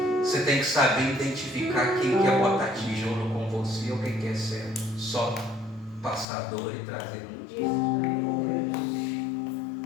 tem que saber identificar quem quer botar tijolo com você ou quem quer ser só passador e trazer luz.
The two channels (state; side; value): drops out; right; at 6.2 s